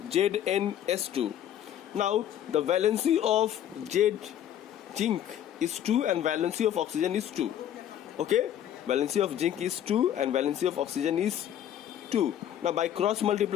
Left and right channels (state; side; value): quieter; right; 10.6 dB